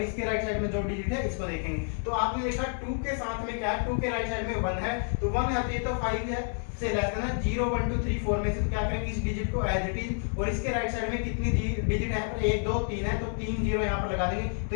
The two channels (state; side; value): silent; right; 58 dB below the other